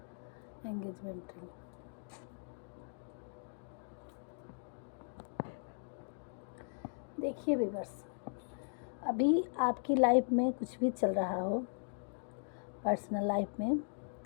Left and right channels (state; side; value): silent; right; digital silence